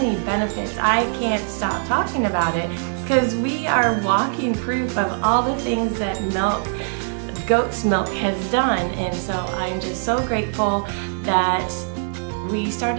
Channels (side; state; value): left; silent; 64 dB below the other